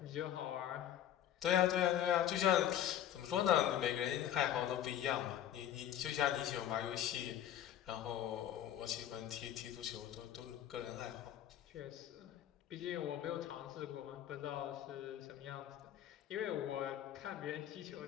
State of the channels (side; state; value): right; quieter; 11.0 dB